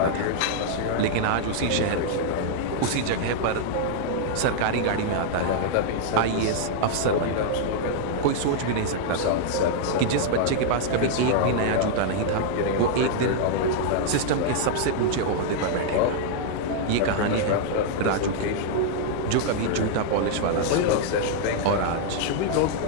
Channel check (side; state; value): both; different; correlation -0.01